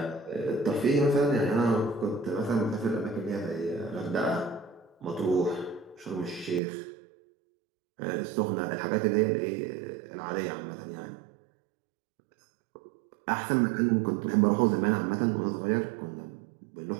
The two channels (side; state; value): left; drops out; at 6.6 s